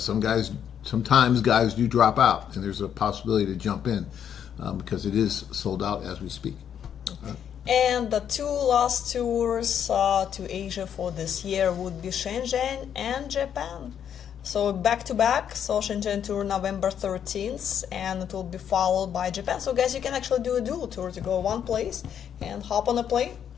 guys do drop out, and there's a possibility to jump in because it is sold out as we speak. And the two last tours to Asia for this year would be Shenzhen and Japan. So back to back, so Shenzhen tour November 13th, and it will be followed by Japan. So guys, you can actually do a dual tour to go one place and hop on a plane,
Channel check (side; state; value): right; quieter; 8.8 dB